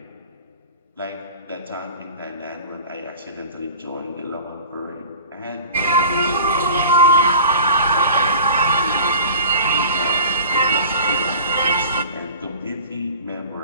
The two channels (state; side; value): inverted; both; correlation -0.41